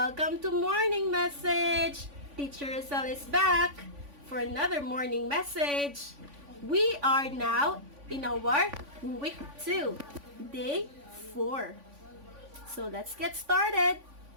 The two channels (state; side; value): late; left; 3.5 ms